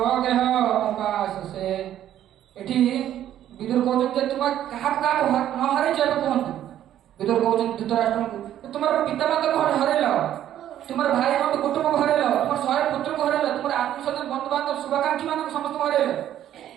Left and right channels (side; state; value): left; quieter; 11.5 dB